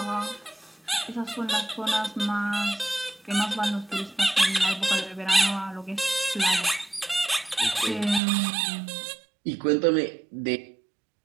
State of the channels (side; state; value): left; drops out; at 8.2 s